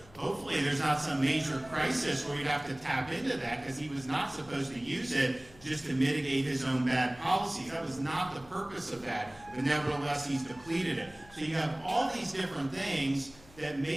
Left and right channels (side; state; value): left; noise; hum, 23 dB below the sound